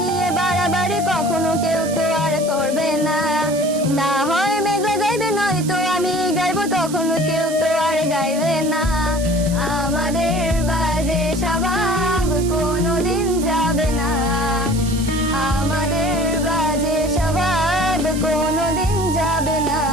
নিয়ে বাড়াবাড়ি, কখনো কেউ তো আর করবে না। না হয় মেঘলা গাইবে, নয়তো আমি গাইবো, তখনো কেউ তো আর গাইবে না। আমাদের বাজে স্বভাব কোনোদিন যাবে না। আমাদের বাজে স্বভাব কোনোদিন যাবে না।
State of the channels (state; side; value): noise; right; hiss, 12 dB below the sound